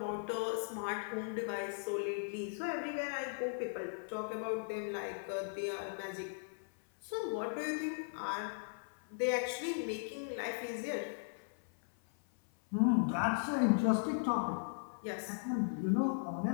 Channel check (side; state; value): right; silent; 52 dB below the other